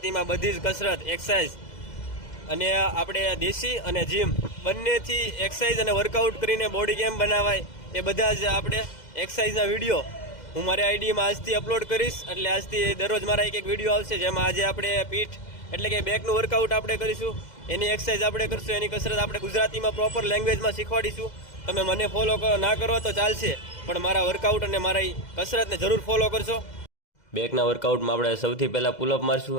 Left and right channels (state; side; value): late; right; 2.0 ms